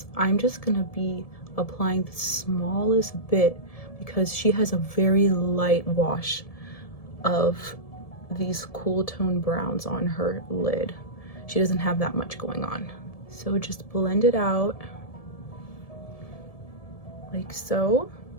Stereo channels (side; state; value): right; late; 1.7 ms